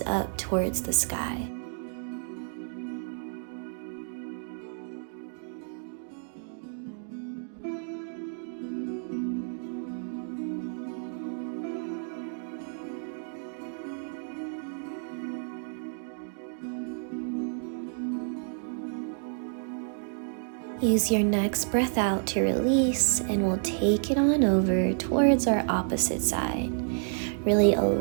up towards the sky. Use your next breath out to release, and we'll take it on over towards our opposite side. Really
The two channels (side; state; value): left; silent; digital silence